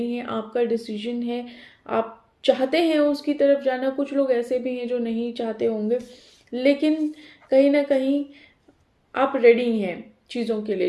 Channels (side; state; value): both; identical; correlation 1.00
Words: हैं, आपका डिसीजन है, आप चाहते हैं उसकी तरफ जाना। कुछ लोग ऐसे भी हैं जो नहीं चाहते होंगे, लेकिन कहीं ना कहीं आप रेडी हैं चीज़ों के लिए,